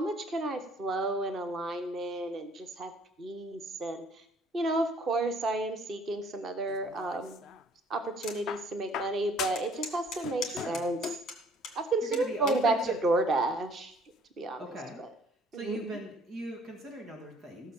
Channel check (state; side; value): normal; both; correlation 0.57